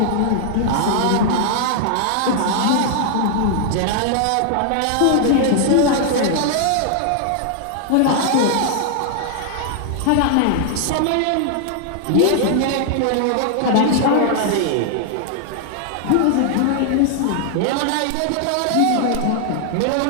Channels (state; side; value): different; both; correlation 0.00